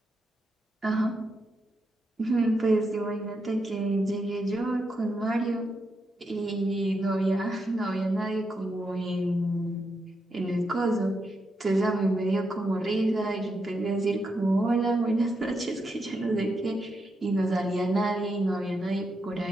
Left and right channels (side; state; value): both; normal; correlation 0.83